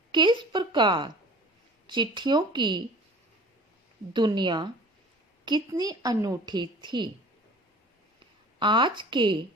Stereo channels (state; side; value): normal; both; correlation 0.44